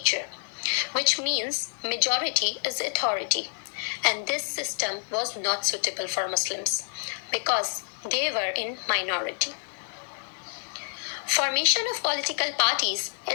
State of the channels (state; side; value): silent; right; 60 dB below the other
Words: which means majority is authority, and this system was not suitable for Muslims because they were in minority. Formation of political parties